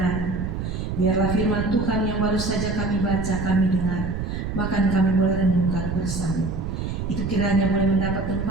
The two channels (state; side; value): noise; right; rumble, 4 dB below the sound